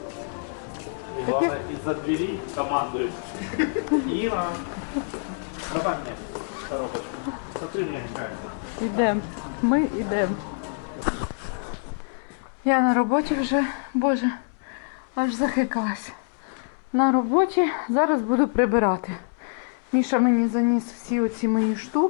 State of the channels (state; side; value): silent; right; 61 dB below the other